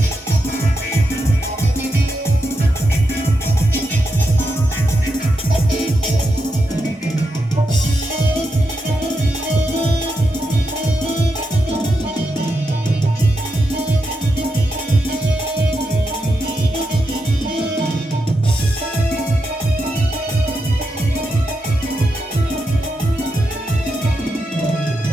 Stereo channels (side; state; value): both; normal; correlation 0.85